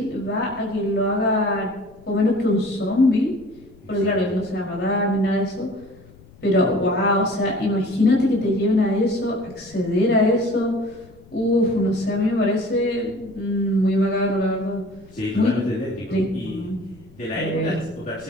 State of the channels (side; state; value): left; noise; rumble, 24 dB below the sound